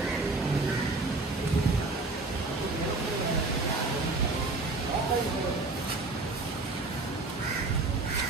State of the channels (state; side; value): quieter; left; 3.4 dB